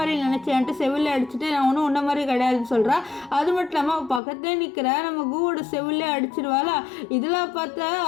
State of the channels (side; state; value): right; drops out; at 4.2 s